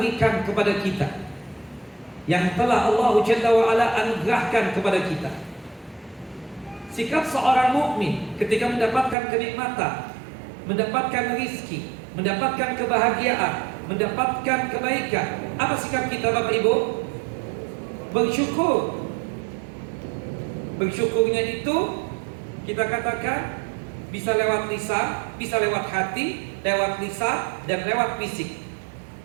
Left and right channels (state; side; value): drops out; left; at 9.2 s